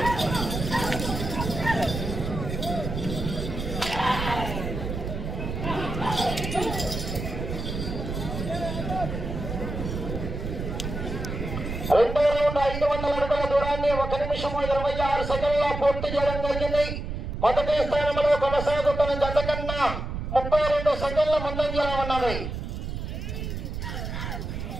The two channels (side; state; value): right; noise; rumble, 5 dB below the sound